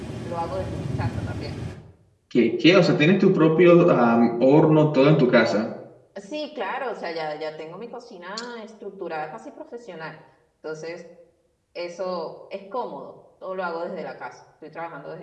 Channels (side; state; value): both; identical; correlation 1.00